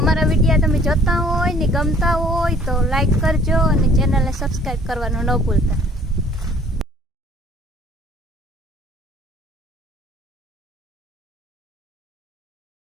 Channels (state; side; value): normal; both; correlation 0.55